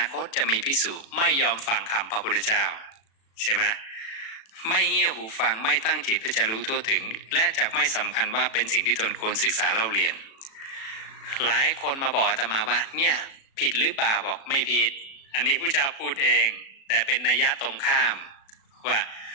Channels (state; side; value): late; right; 36 ms